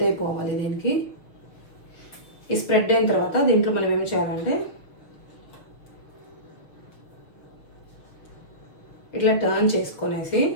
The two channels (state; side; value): late; right; 6.2 ms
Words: అయిపోవాలి దీనికి. ఈ స్ప్రెడ్ అయిన తర్వాత దీంట్లో మనం ఏమి చేయాలంటే ఇట్లా టర్న్ చేసుకొనేసి,